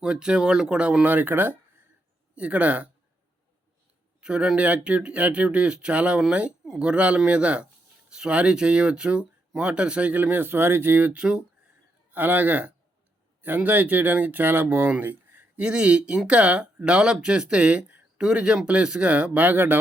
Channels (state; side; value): normal; both; correlation 0.79